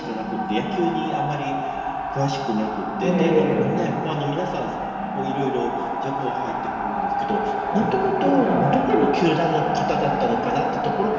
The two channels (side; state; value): both; identical; correlation 1.00